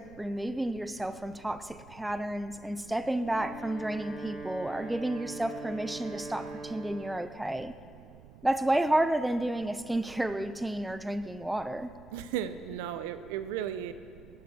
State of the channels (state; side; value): noise; right; rumble, 20 dB below the sound